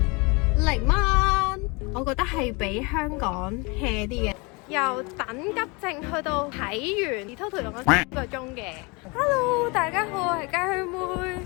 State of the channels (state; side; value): quieter; right; 28.5 dB